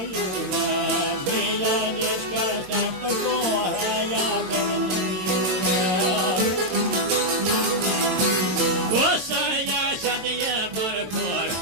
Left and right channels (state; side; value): late; left; 22 ms